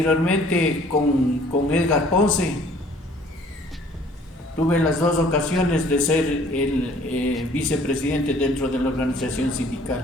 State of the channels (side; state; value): both; normal; correlation 0.56